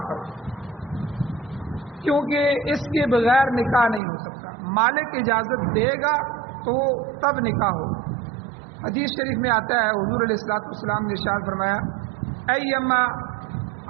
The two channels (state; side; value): drops out; left; at 4.0 s